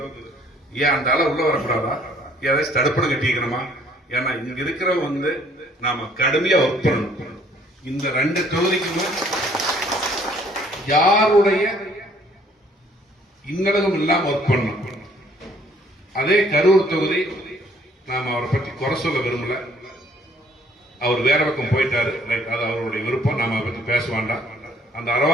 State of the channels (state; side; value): normal; both; correlation 0.61